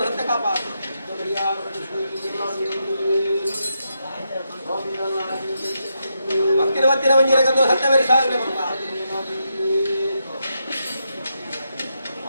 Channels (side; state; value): both; inverted; correlation -0.83